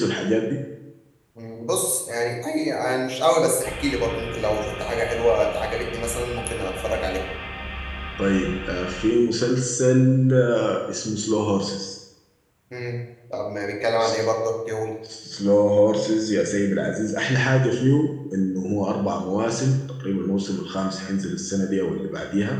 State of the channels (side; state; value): both; identical; correlation 1.00